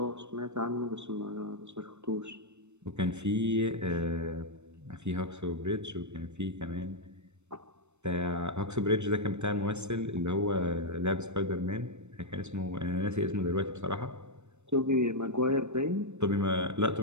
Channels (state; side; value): late; left; 0.82 ms